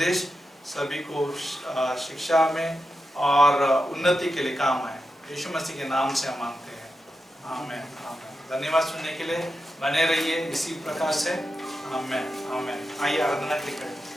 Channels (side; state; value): both; normal; correlation 0.89